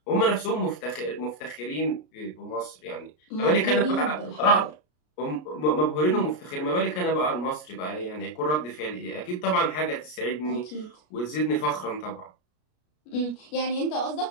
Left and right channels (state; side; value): late; right; 33 ms